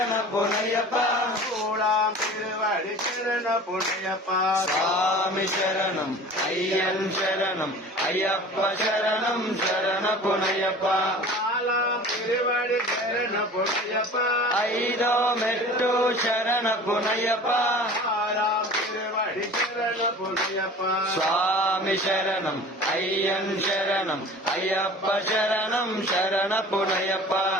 புனையப்பா கூடாம் திருவடி சரண புனையப்பா சுவாமி சரணம் ஐயன் சரணம் ஐயப்ப சரணம் சரண புனையப்பா நாலாம் திருவடி சரண புனையப்பா ஐதோ மெட்டோ சரண புனையப்பா ஆறாம் திருவடி சரண புனையப்பா சுவாமி சரணம் ஐயன் சரணம் ஐயப்ப சரணம் சரண புனையப்பா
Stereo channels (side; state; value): both; normal; correlation 0.41